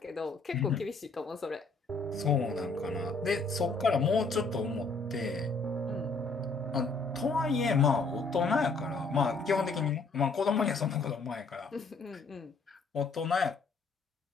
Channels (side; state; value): right; quieter; 3.9 dB